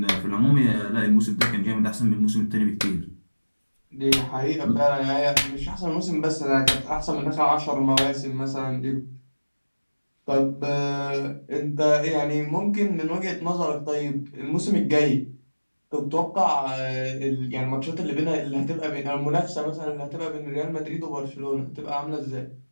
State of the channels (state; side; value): inverted; both; correlation -1.00